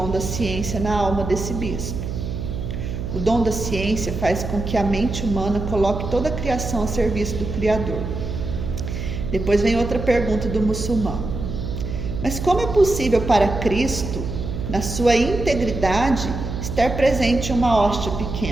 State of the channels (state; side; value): noise; right; hum, 5 dB below the sound